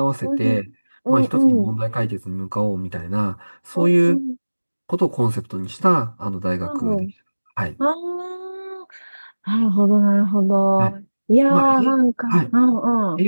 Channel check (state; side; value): inverted; both; correlation -1.00